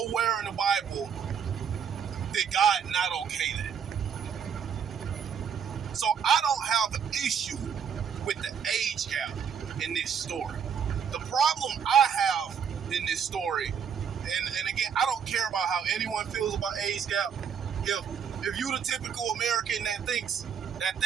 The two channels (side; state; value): left; quieter; 7.4 dB